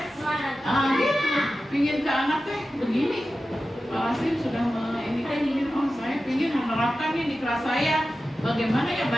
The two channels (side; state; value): both; normal; correlation 0.93